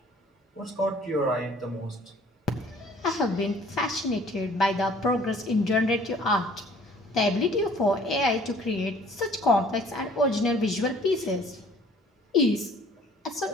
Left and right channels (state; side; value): normal; both; correlation 0.55